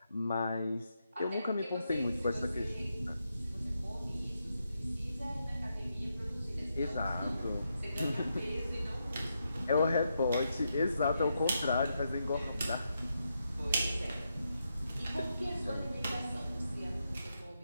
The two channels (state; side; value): inverted; both; correlation -0.83